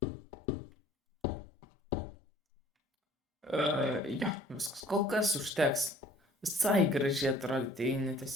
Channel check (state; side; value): normal; both; correlation 0.54